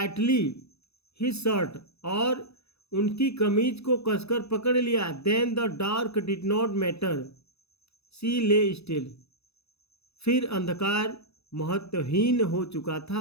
his shirt. और उनकी कमीज को कसकर पकड़ लिया। Then the dark did not matter. She lay still. फिर अंधकार महत्वहीन हो चुका था,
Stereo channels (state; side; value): late; right; 0.79 ms